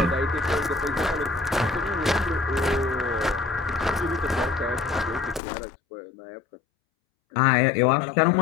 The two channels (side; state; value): right; drops out; at 5.4 s